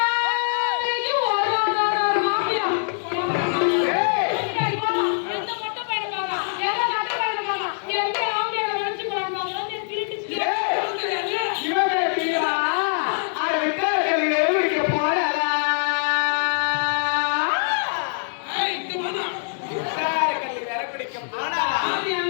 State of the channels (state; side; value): silent; right; digital silence